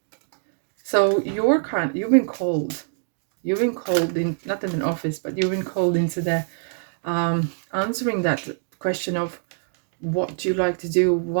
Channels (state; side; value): silent; left; digital silence